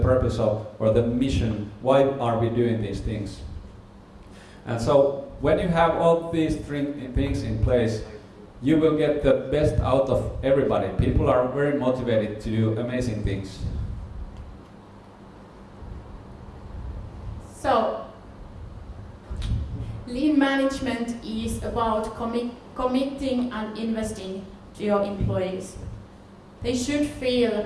or the mission. Why are we doing these things? And so when you have all these three things in place, you will get the best out of everybody. People are very motivated to do amazing things. So, lean management is about committing and investing to your employees. They should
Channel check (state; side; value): identical; both; correlation 1.00